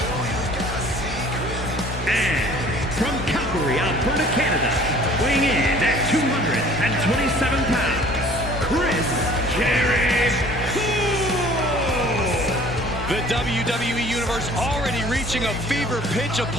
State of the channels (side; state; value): both; normal; correlation 0.51